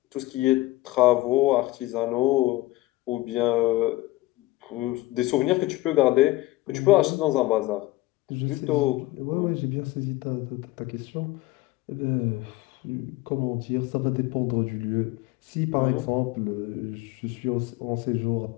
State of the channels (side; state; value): right; quieter; 18.9 dB